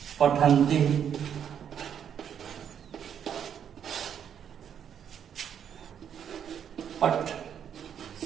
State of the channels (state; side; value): quieter; left; 8.6 dB